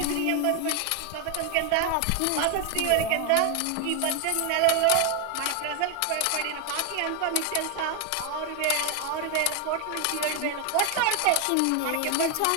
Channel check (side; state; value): both; different; correlation 0.01